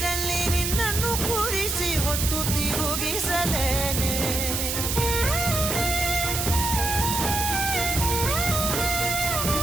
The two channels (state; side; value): noise; right; hiss, 1 dB below the sound